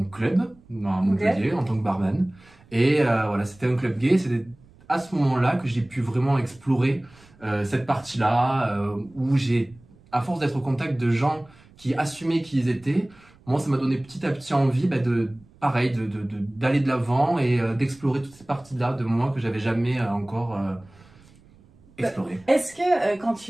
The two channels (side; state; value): right; noise; rumble, 27 dB below the sound